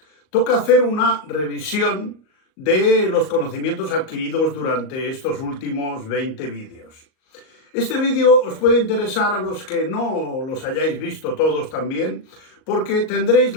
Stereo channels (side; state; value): right; late; 38 ms